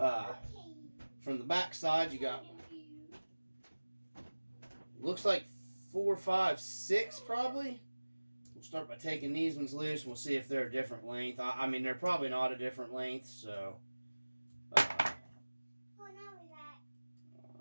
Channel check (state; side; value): inverted; both; correlation -1.00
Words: From the back side, you got, looks like 4, 5, 6 probably. We'll start by taking these ones loose and we'll see if they're a different length. I mean, they're probably not a different length, so. Alright.